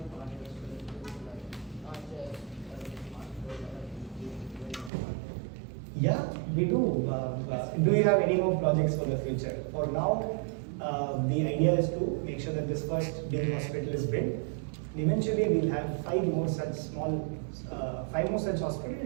projects for the future, like not just Yeah, we do. Do you have any more projects for the future? For now, the idea is to make sure that this first big hospital is built. Eventually, we'll have 5 more such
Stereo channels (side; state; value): left; drops out; at 4.9 s